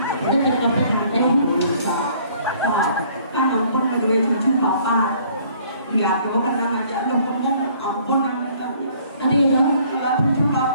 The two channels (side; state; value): both; inverted; correlation -0.59